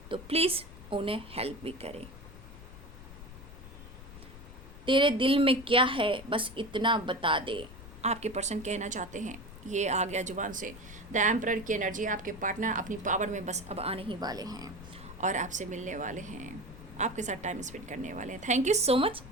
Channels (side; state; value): left; noise; rumble, 15 dB below the sound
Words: तो प्लीज़ उन्हें हेल्प भी करें। तेरे दिल में क्या है बस इतना बता दे, आपके पर्सन कहना चाहते हैं। ये आ गया जुबान से द एम्परर की एनर्जी। आपके पार्टनर अपनी पावर में बस अब आने ही वाले हैं और आपसे मिलने वाले हैं, आपके साथ टाइम स्पेंड करने वाले हैं। Thank you so much